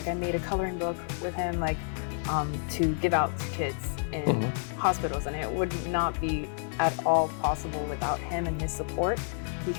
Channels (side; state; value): right; silent; 58 dB below the other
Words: made a coloring book with him, to give out to kids in hospitals, and it would not be at all possible without him and his support,